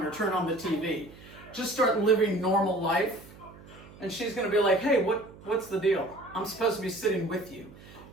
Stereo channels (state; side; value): noise; right; hum, 20 dB below the sound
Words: or turn on the TV. Just start living normal life, and she's going to be like, hey, what's the deal? I'm supposed to be sitting with you.